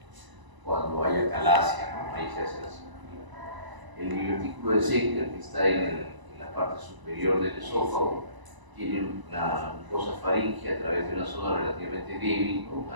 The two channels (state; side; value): late; left; 1.0 ms